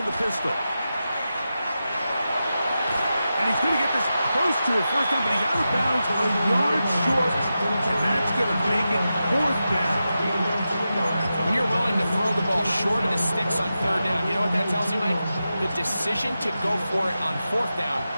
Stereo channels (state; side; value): inverted; both; correlation -0.91